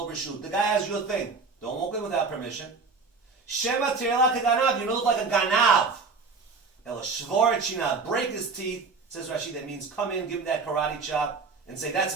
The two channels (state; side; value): quieter; left; 4.5 dB